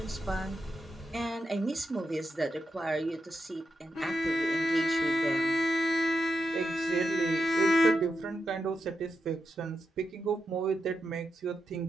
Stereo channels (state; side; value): normal; both; correlation 0.86